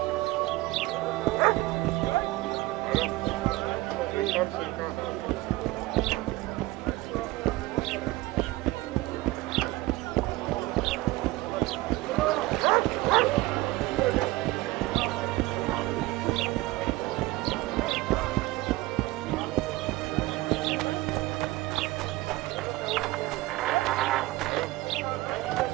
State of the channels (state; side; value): quieter; left; 19.4 dB